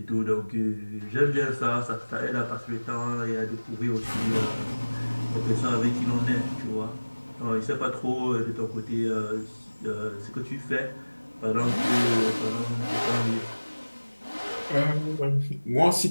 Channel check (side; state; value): both; inverted; correlation -1.00